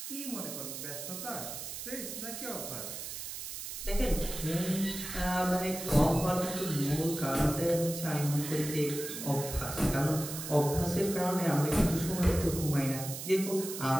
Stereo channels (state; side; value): noise; right; hiss, 7 dB below the sound